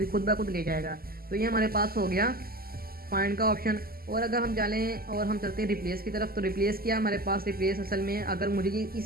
खुद ब खुद ले जाएगा। तो ये हमारे पास हो गया फाइंड का ऑप्शन। और अगर हम चलें और हम चलते हैं रिप्लेस की तरफ, तो रिप्लेस किया हमारे पास। रिप्लेस असल में अगर मुझे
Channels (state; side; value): late; left; 0.43 ms